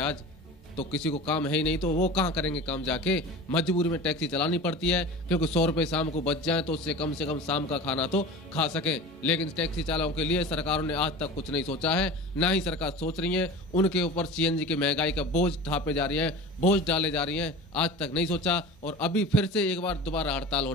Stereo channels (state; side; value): normal; both; correlation 0.34